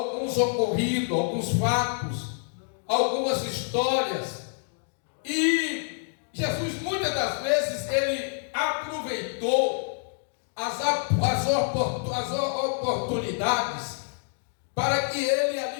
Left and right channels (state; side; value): silent; right; digital silence